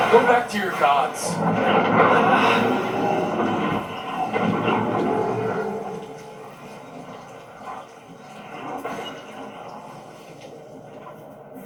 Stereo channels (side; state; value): both; identical; correlation 1.00